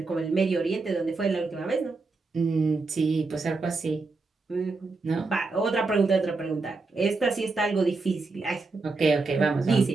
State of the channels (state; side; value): quieter; left; 3.8 dB